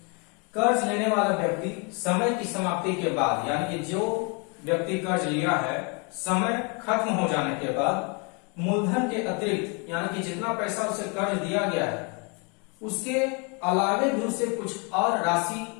कर्ज लेने वाला व्यक्ति समय की समाप्ति के बाद, यानी कि जो व्यक्ति कर्ज लिया है, समय खत्म हो जाने के बाद मूलधन के अतिरिक्त, यानी कि जितना पैसा उसे कर्ज दिया गया है उसके अलावे भी उसे कुछ और राशि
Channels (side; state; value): right; quieter; 33.3 dB